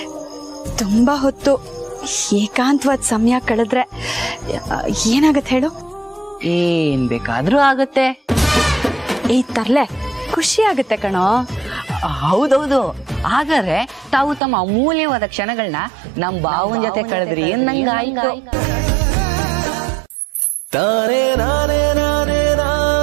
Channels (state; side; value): drops out; left; at 14.4 s